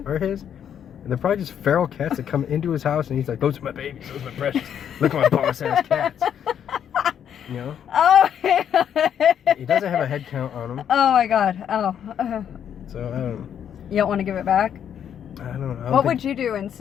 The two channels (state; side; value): quieter; right; 9.0 dB